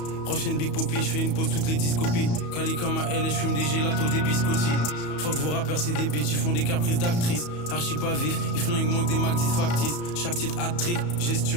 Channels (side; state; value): right; late; 34 ms